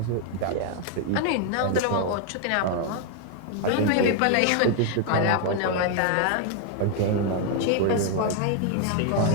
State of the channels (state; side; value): different; both; correlation 0.00